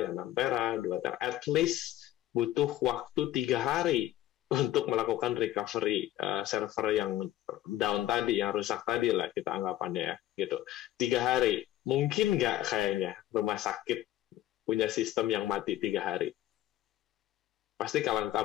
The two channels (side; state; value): right; quieter; 13.8 dB